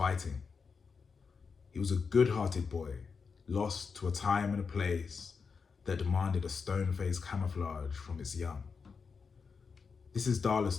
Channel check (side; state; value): right; quieter; 5.4 dB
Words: He was a good-hearted boy, lost to a time and a place that demanded a stone-faced camouflage from its young. This is